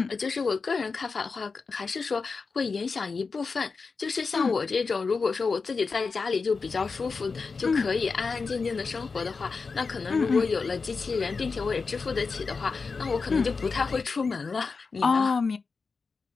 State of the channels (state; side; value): quieter; right; 4.7 dB